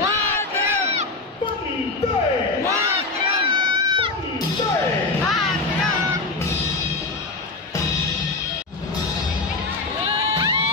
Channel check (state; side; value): quieter; right; 3.6 dB